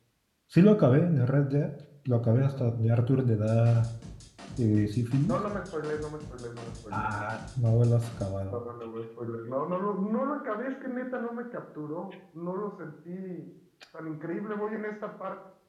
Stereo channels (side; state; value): both; identical; correlation 1.00